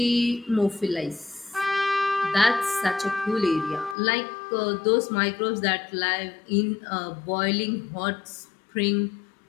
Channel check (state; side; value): drops out; right; at 4.0 s